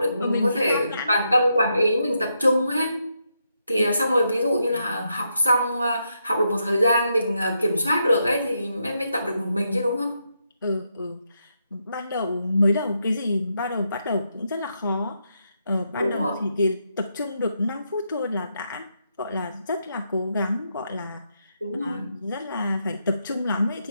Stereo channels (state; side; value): inverted; both; correlation -0.81